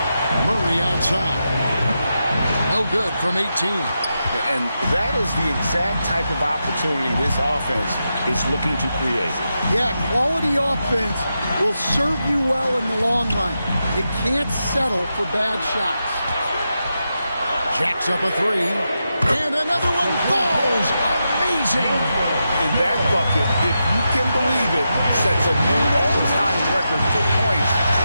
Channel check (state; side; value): inverted; both; correlation -0.87